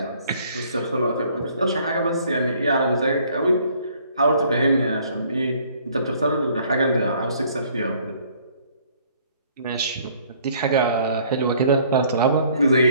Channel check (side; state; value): both; inverted; correlation -0.60